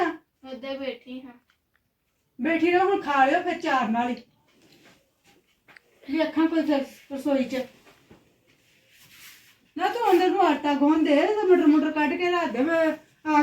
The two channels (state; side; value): identical; both; correlation 1.00